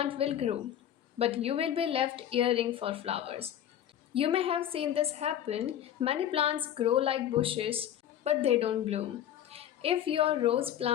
will grow, but you will be left yearning for flowers. You may have seen this happen. Many plants grow like bushes, but they don't bloom. If your rose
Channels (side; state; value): right; quieter; 10.7 dB